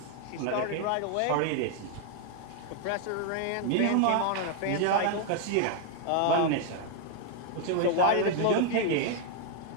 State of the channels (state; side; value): different; both; correlation 0.00